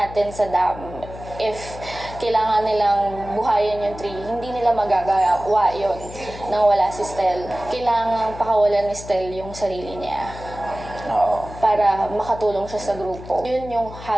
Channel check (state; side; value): noise; left; hum, 14 dB below the sound